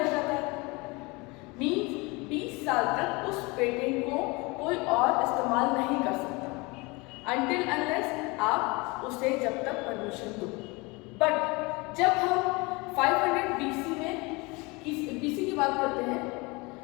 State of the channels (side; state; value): right; quieter; 25.8 dB